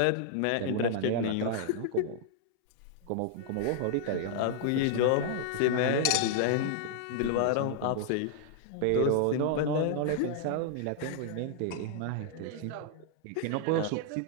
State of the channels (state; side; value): different; both; correlation -0.01